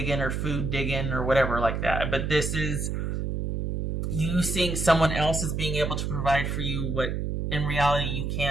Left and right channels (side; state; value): right; noise; hum, 2 dB below the sound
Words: or food digging or whatever like that, but this is you seeing someone else as being able to provide for you what in reality you